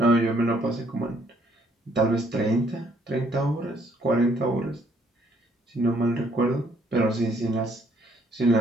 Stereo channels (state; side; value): normal; both; correlation 0.66